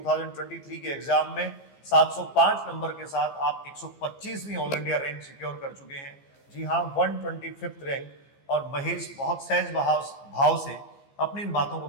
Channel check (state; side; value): late; right; 15 ms